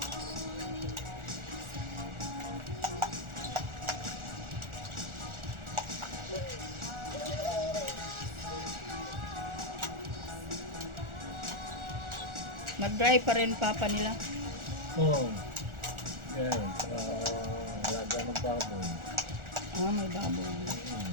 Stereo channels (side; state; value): left; late; 1.4 ms